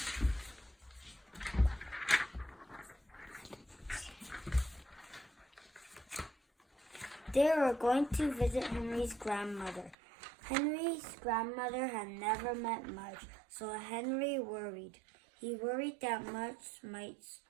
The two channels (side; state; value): left; drops out; at 10.0 s